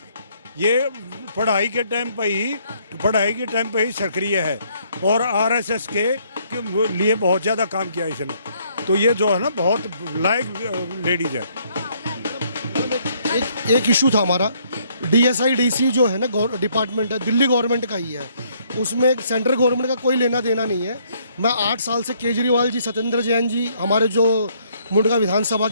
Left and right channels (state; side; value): inverted; both; correlation -0.67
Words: ये पढ़ाई के टाइम पे ही सक्रिय है और आरएसएस के लिए बहुत ज्यादा काम किया इसने। तो ये जो है ना बहुत लायक लेडीज है। एक इशू था हमारा, DSI-DC जो है ना डिपार्टमेंट है, दिल्ली गवर्नमेंट का ही है, उसमें सेंट्रल गवर्नमेंट का कोई लेना देना नहीं है। मैं 8 साल से केजरीवाल जी, सत्येंद्र जैन जी, हमारे जो मुंडका विधानसभा